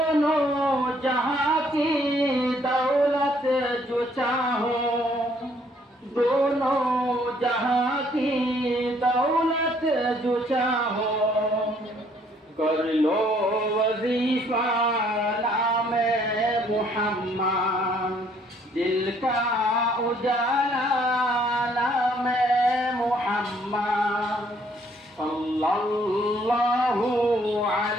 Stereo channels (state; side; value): normal; both; correlation 0.64